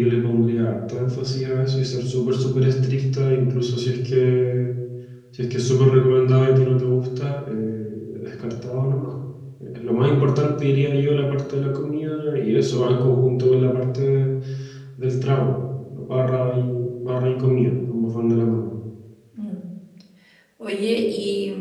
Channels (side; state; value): both; identical; correlation 1.00